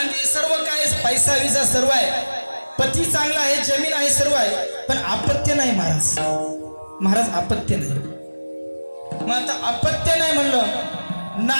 सर्व काय, पैसा विसा सर्व आहे, पती चांगला आहे, जमीन आहे, सर्व आहे, पण अपत्य नाही महाराज. महाराज अपत्य नाही. मग आता अपत्य नाही म्हणलं,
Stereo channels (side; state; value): both; inverted; correlation -1.00